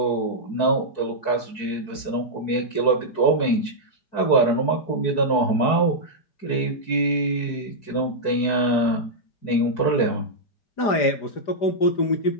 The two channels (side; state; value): right; late; 4.6 ms